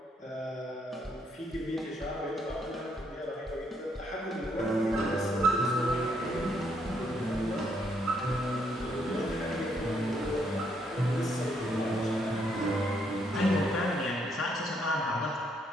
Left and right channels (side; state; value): both; normal; correlation 0.73